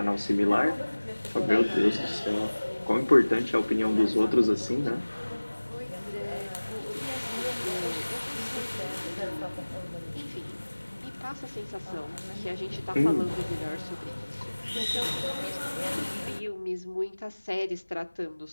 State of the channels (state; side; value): inverted; both; correlation -1.00